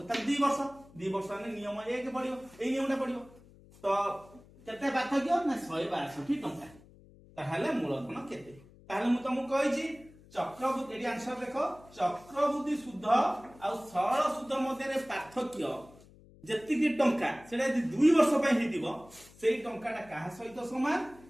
त 2 वर्ष ने नियम 1 पडियो ए नियमटा पडियो तो केते पार्थक्य ना 162 टंका ताहले मूलधन केते ताहले मु तुमको कहिची चक्रवर्ती एडी आंसर देखो चक्रवर्ती शुद्ध और सरल शुद्ध मध्य रे पार्थक्य जेति की टंका सेडा 2 वर्ष पई हिदिबो सेई टंकाटा काहा सहित समान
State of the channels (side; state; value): left; noise; hum, 24 dB below the sound